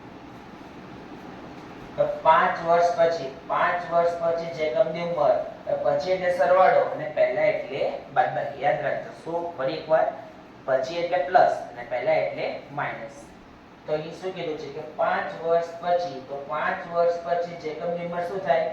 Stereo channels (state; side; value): identical; both; correlation 1.00